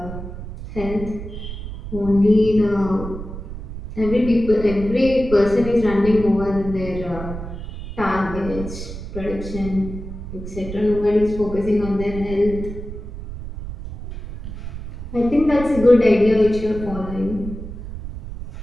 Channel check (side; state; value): right; noise; rumble, 10 dB below the sound